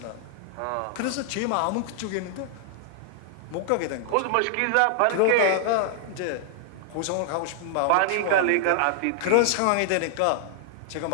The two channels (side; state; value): both; different; correlation 0.00